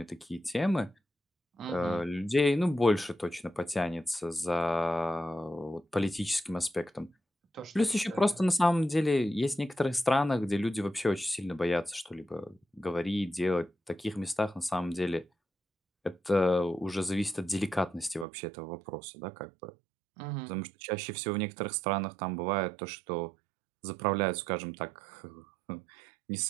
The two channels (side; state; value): left; drops out; at 18.2 s